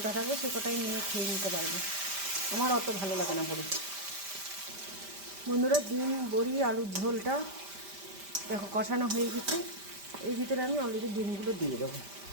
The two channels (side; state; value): left; late; 5.1 ms